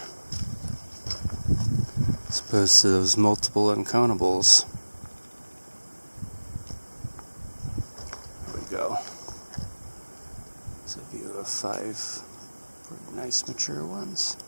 as opposed to those multiple uncountables. There we go. There's a view of 5 pretty nice mature ones.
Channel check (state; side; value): inverted; both; correlation -1.00